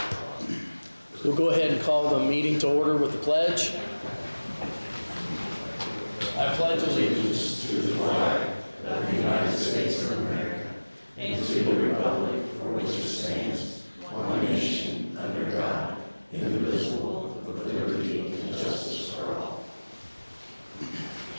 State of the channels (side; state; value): both; inverted; correlation -1.00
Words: We'll go ahead and call the meeting to order with the pledge. I pledge allegiance To the flag of the United States of America and to the republic for which it stands, one nation, under God, indivisible, with liberty and justice for all.